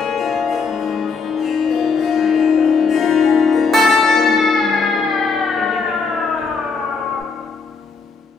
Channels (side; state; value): right; quieter; 4.8 dB